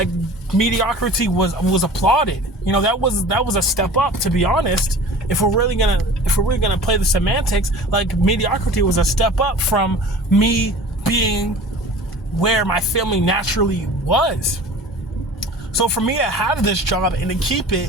mediocrity was applauded. That was a step up, to be honest. If we're really gonna play the semantics, like mediocrity was a step up from me being where my family naturally was. So for me to have this job and to keep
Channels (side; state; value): both; normal; correlation 0.42